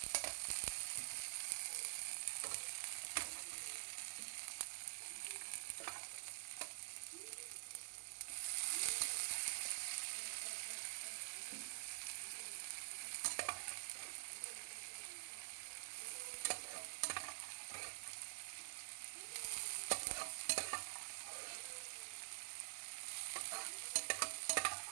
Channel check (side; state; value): left; silent; digital silence